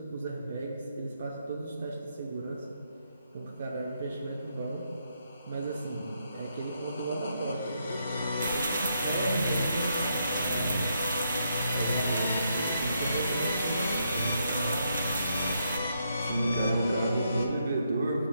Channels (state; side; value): inverted; both; correlation -0.78